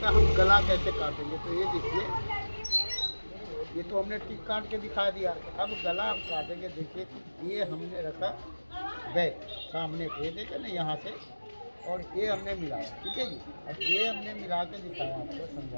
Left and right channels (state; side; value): inverted; both; correlation -1.00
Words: हम गला कैसे काटेंगे। तो ये देखिए ये तो हमने टिक काट के दिखा दिया, अब गला हम काटेंगे। देखिए ये हमने रखा बैक सामने पे, देखे ना यहाँ से, और ये हमने मिलाया, ठीक है जी। अब ये हमने मिला के दिखाया आपको,